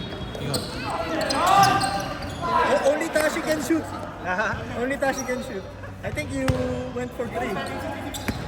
Yun. Only Tashi can shoot. Only Tashi can shoot. I think you went for three.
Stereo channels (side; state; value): both; identical; correlation 1.00